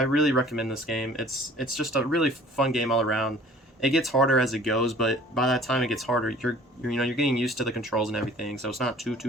really recommend this game. It's just a really fun game all around. It gets harder as it goes, but by that time it gets harder, you're getting used to the controls and everything, so it's not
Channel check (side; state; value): both; normal; correlation 0.50